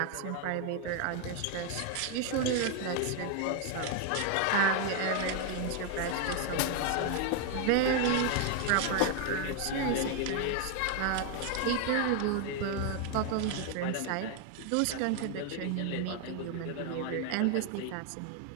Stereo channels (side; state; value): both; different; correlation 0.00